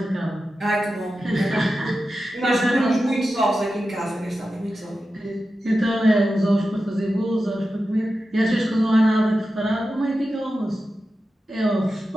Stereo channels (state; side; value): normal; both; correlation 0.92